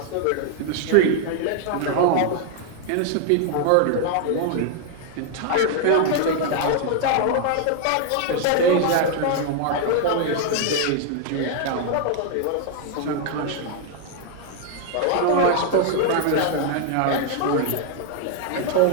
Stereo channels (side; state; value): both; different; correlation 0.00